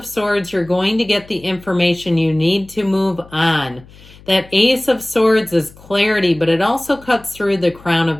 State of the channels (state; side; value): noise; left; hum, 23 dB below the sound